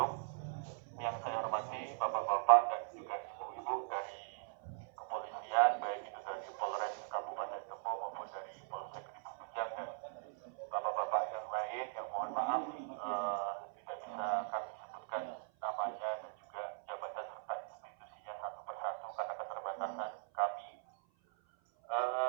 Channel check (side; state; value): left; silent; 51 dB below the other